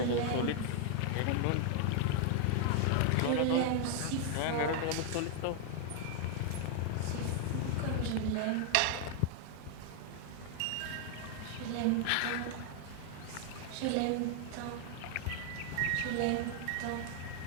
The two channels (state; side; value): different; both; correlation 0.00